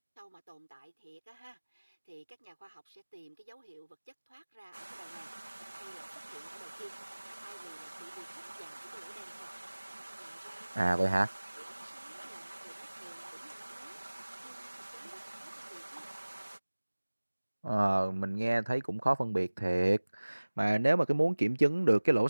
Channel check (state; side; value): inverted; both; correlation -1.00